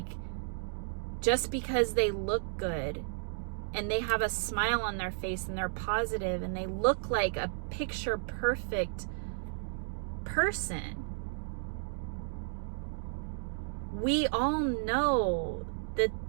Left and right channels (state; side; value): silent; left; digital silence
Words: just because they look good and they have a smile on their face and they're positive and they look like a picture perfect person, we all know